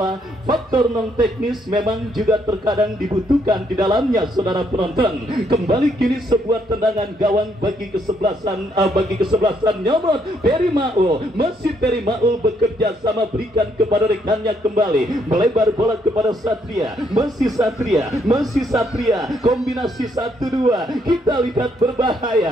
Faktor non teknis memang juga terkadang dibutuhkan di dalamnya saudara penonton. Kembali kini sebuah tendangan gawang bagi kesebelasan Nyomot Peri Maul. Masih Peri Maul bekerja sama berikan kepada rekannya kembali, melebar bola kepada Satria. Masih Satria, kombinasi 1-2, kita lihat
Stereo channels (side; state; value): both; normal; correlation 0.72